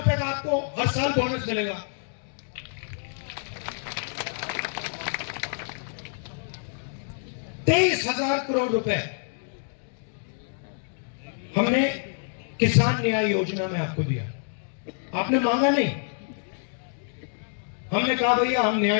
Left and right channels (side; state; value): right; silent; digital silence